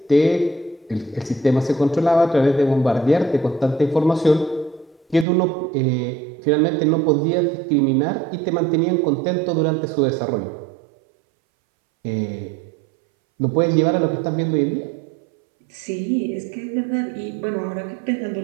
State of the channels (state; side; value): drops out; left; at 5.2 s